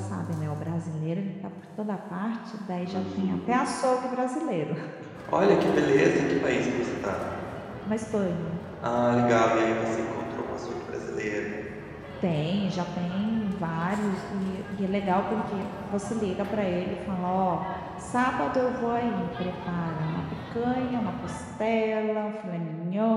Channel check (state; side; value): identical; both; correlation 1.00